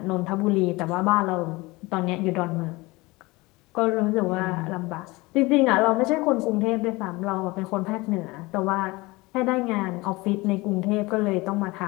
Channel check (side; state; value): right; quieter; 22.7 dB